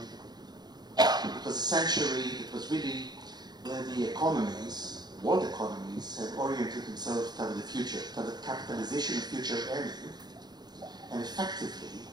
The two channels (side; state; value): left; late; 0.20 ms